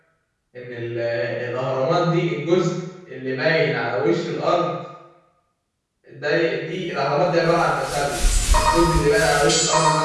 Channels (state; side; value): identical; both; correlation 1.00